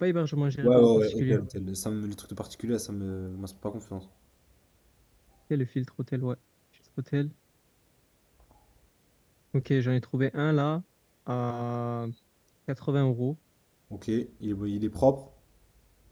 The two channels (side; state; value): both; identical; correlation 1.00